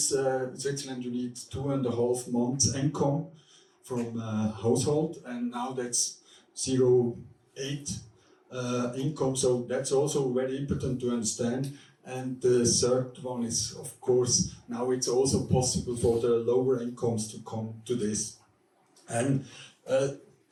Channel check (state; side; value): identical; both; correlation 1.00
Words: you need 2.5 months income from a household, and now that's 0.8 income. So that's also very important to understand. And the third one is, of course, now it's also possible for the lower incomes to come to this. And